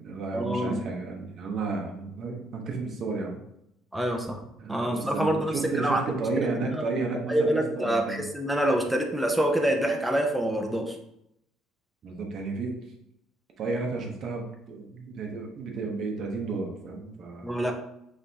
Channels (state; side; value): normal; both; correlation 0.75